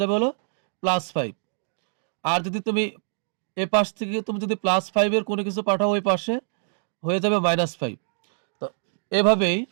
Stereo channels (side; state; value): left; silent; digital silence